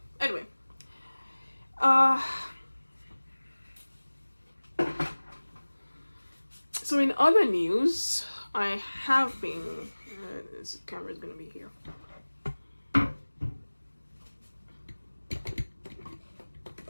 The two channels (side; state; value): both; inverted; correlation -1.00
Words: Anyway, so in other news, I have been this camera is going to be here.